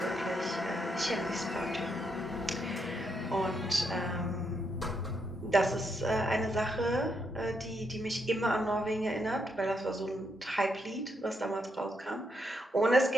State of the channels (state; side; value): normal; both; correlation 0.78